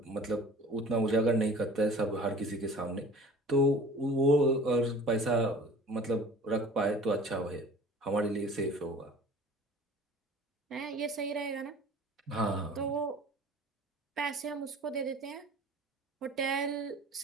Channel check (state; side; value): normal; both; correlation 0.45